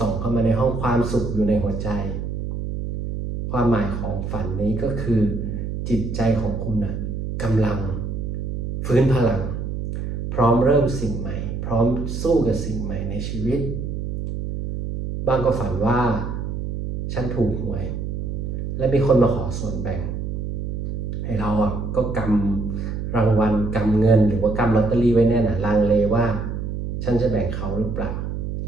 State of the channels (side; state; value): right; noise; hum, 4 dB below the sound